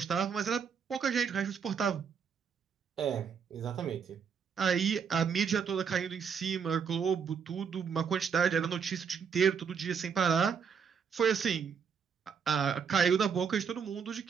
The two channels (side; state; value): left; quieter; 6.6 dB